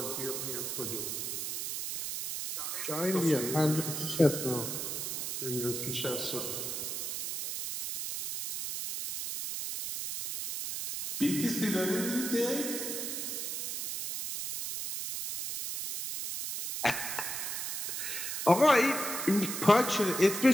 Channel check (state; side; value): noise; right; hiss, 3 dB below the sound